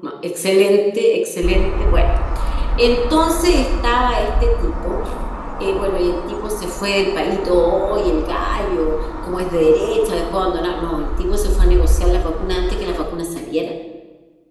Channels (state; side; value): identical; both; correlation 1.00